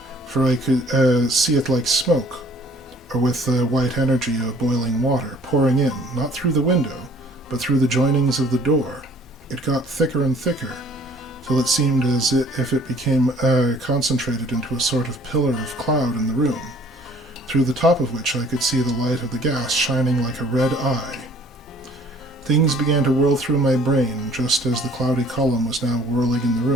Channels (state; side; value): normal; both; correlation 0.55